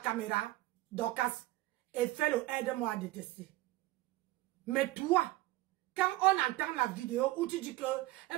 Dorcas, et faire le aide-moi à détester. Mais toi, quand on entend la vidéo où tu dis que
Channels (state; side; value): quieter; left; 17.4 dB